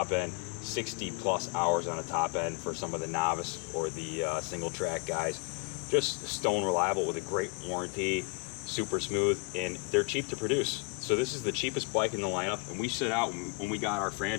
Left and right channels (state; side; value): quieter; right; 30.2 dB